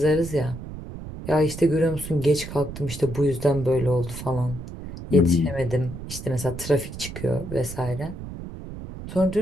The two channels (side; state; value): right; noise; rumble, 10 dB below the sound